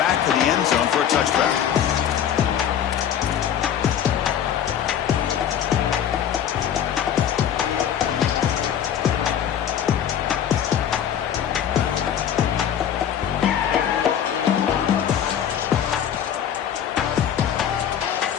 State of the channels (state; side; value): quieter; right; 9.4 dB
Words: of the end zone for a touchback.